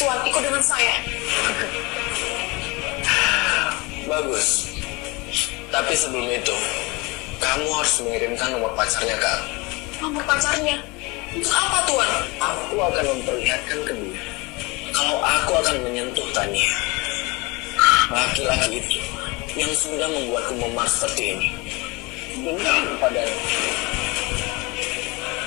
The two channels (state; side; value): quieter; right; 25.7 dB